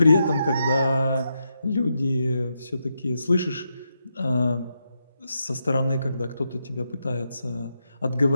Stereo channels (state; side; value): inverted; both; correlation -0.84